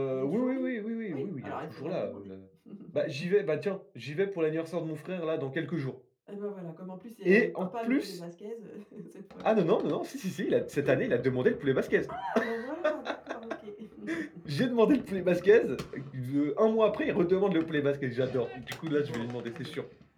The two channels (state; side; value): identical; both; correlation 1.00